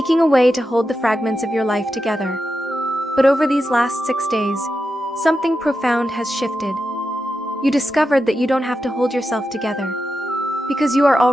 a way to hold the fragments of your life together. But over these last 6 days, something profound has shifted. You discovered that you don't have to hold yourself together, because you are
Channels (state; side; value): normal; both; correlation 0.89